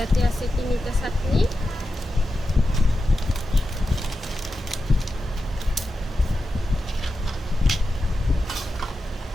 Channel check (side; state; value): both; normal; correlation 0.91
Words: আছে তিনিটা চাটনি।